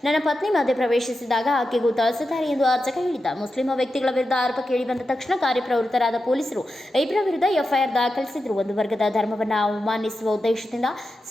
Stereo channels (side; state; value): both; normal; correlation 0.90